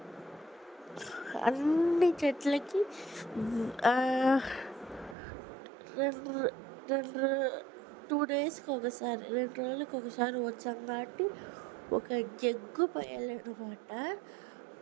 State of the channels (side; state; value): left; drops out; at 5.2 s